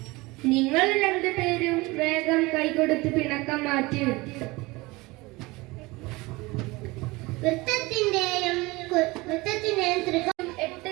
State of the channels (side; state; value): left; quieter; 22.6 dB